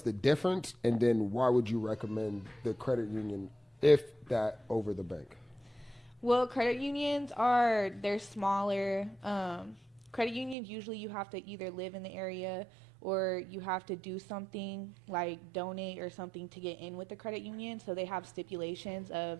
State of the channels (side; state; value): left; drops out; at 10.6 s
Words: the difference, and then why would you recommend the credit union, if that, over the bank? Well, credit unions they're smaller. Credit unions, usually you have to either live in the area or you have to do something like donate or something to get in with the credit union. So they have stipulations of